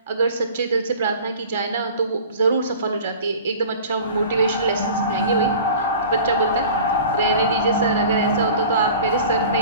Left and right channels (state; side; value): inverted; both; correlation -0.41